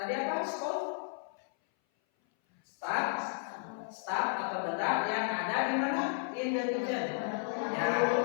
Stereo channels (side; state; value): right; silent; 56 dB below the other